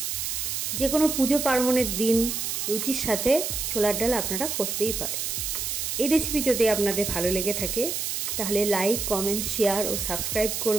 যে কোনো পুজো পার্বণের দিন রুটির সাথে ছোলার ডাল আপনারা করতেই পারেন। এই রেসিপি যদি আপনাদের ভালো লেগে থাকে তাহলে লাইক, কমেন্ট, শেয়ার ও সাবস্ক্রাইব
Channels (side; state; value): right; noise; hiss, 2 dB below the sound